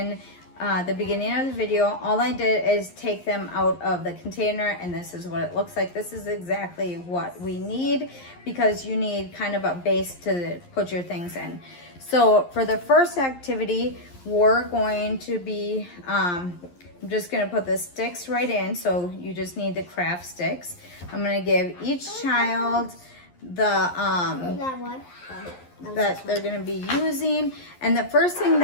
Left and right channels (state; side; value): late; right; 11 ms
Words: the beginning of the video. All I did is take them out of the container, and this is what it looks like. This is exactly what we need, because you need kind of a base to put your things in. So for the first activity, we're going to be, I'm just going to put the sticks right in. So you just need the craft sticks. I'm going to give each child the that they're going to be using, and the first thing